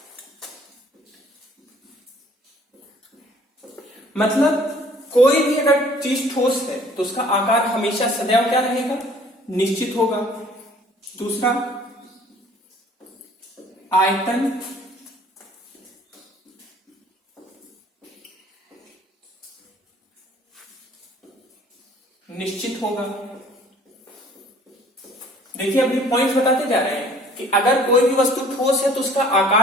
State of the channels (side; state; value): both; normal; correlation 0.54